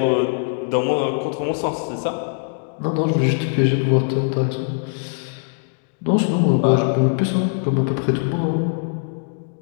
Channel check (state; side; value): silent; right; 65 dB below the other